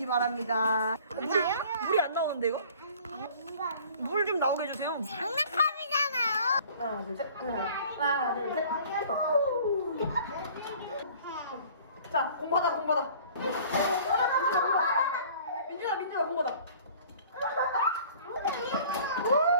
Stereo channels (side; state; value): both; inverted; correlation -0.50